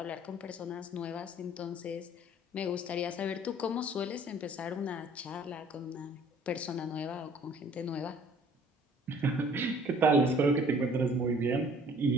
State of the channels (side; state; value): both; normal; correlation 0.54